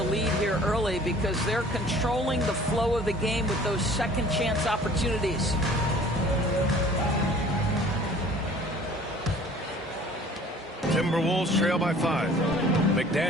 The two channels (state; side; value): normal; both; correlation 0.50